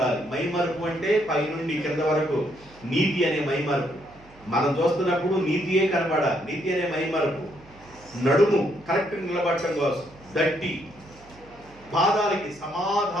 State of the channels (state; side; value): noise; right; hum, 25 dB below the sound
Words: మైమరుపు అంటే పైనుండి కింద వరకు నీతి అనే మైమరుపు. మనం చూస్తున్నప్పుడు నీతియే కనబడాలి. నీతి అనే మైమరుపు. నడుము కరెక్ట్ నిలబడటం కోసం దట్టి, పాదాలకి